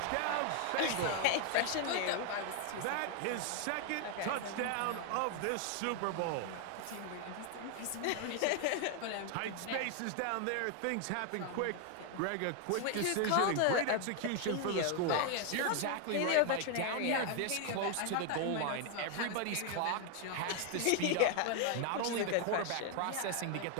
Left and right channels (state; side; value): different; both; correlation 0.00